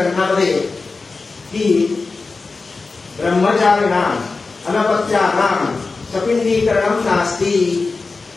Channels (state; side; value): quieter; right; 4.0 dB